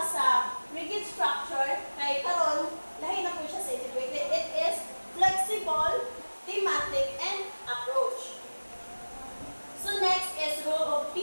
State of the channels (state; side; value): inverted; both; correlation -1.00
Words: sa rigid structure kay karon lahi na po siya sa integrated. It is flexible, thematic, and approach. So next is role of